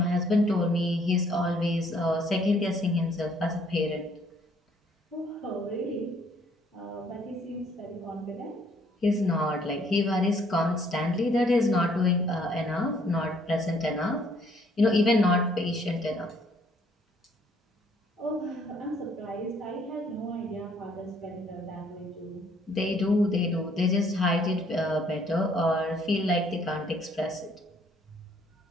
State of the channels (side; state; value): both; normal; correlation 0.64